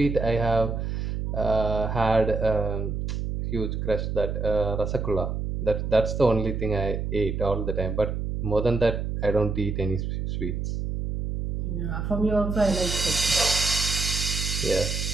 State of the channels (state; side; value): noise; right; hum, 2 dB below the sound